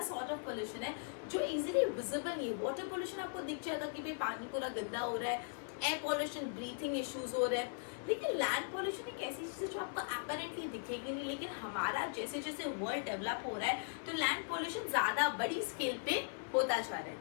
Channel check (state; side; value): silent; right; 52 dB below the other